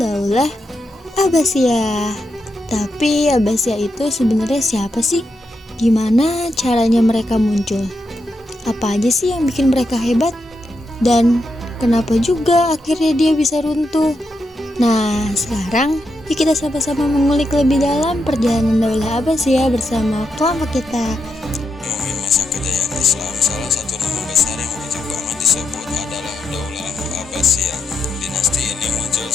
Daulah Abbasiyah. Tapi Abbasiyah itu sebenarnya siapa sih? Gimana caranya mereka muncul? Apa aja sih yang bikin mereka hebat? Dan kenapa juga akhirnya dia bisa runtuh? Nah, sekarang yuk kita sama-sama mengulik lebih dalam perjalanan Daulah Abbasiyah bersama kelompok kita. Ngomongin masa kejayaan Islam, salah satu nama besar yang wajib banget disebut adalah Daulah Abbasiyah. Dinasti ini muncul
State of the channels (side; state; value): both; normal; correlation 0.84